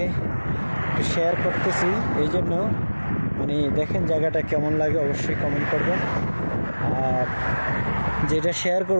একটু শেয়ার করতেছি, এই জন্য মানে দেখেন জায়গাটা কেমন লাগে অবশ্যই কমেন্ট করবেন। আর যেটা শেয়ার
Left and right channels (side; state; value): both; inverted; correlation -1.00